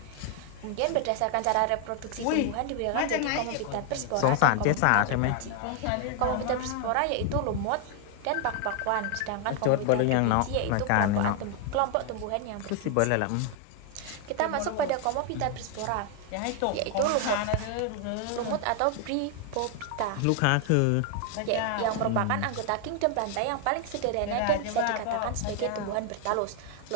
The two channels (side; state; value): both; different; correlation 0.00